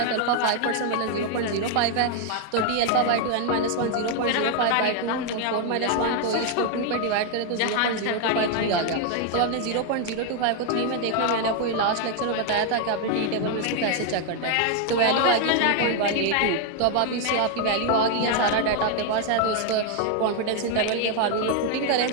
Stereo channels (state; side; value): different; both; correlation 0.01